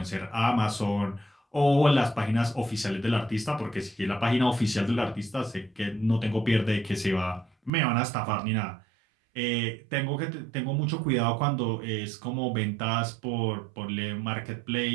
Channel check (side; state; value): left; drops out; at 7.7 s